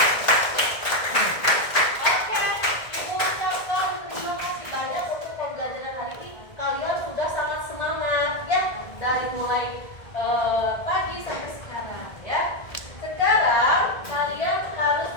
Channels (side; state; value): right; late; 1.7 ms